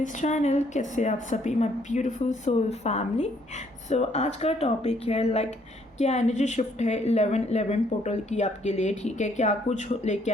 channel. कैसे आप सभी my beautiful soul family. So आज का टॉपिक है क्या एनर्जी शिफ्ट है 11-11 पोर्टल की आपके लिए। ठीक है, क्या कुछ लेके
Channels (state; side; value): normal; both; correlation 0.67